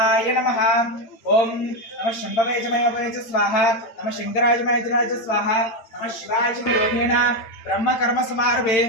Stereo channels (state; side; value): late; right; 8.9 ms